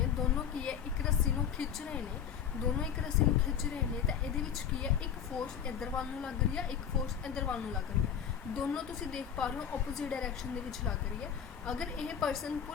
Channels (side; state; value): right; quieter; 8.2 dB